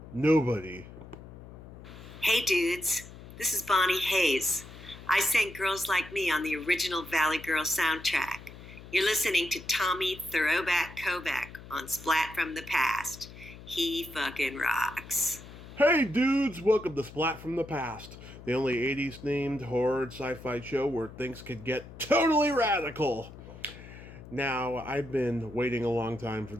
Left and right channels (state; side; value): noise; left; hum, 16 dB below the sound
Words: nobody. Hey dudes, this is Bonnie Hayes. I sang Girls Like Me on the original Valley Girl soundtrack. You're listening to Tommy Throwback Kovac on Splat from the Past. He fucking rocks. Hey dudes, welcome to Splat from the Past, the only 80s themed horror and sci-fi show where things could get totally radical. Now, I've been waiting a long time for